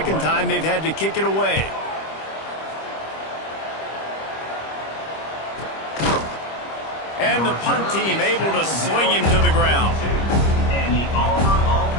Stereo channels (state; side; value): late; right; 25 ms